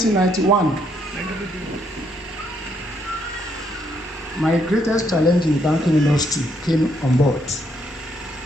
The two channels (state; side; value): normal; both; correlation 0.73